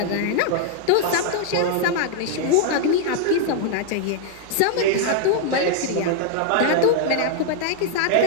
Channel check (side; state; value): both; different; correlation 0.00